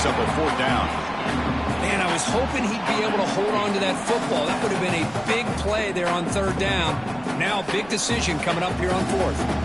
up a 4th down. Man, I was hoping he'd be able to hold on to that football. That would have been a big play there on 3rd down. Now, big decision coming up here on 4th.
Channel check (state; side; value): noise; right; rumble, 22 dB below the sound